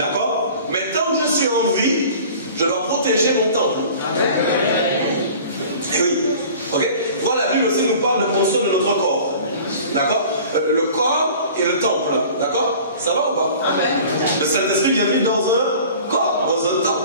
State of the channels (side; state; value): both; inverted; correlation -0.44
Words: Mais tant que je suis en vie, je dois protéger mon temple. Et oui, ok? Voilà, la Bible aussi nous parle de prendre soin de notre corps. D'accord? Le corps et le temple. D'accord? Ça va ou pas? Le Saint-Esprit vient vivre dans un corps, dans un